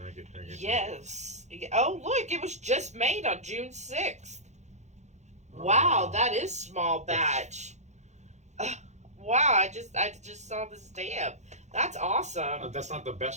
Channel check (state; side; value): late; left; 0.33 ms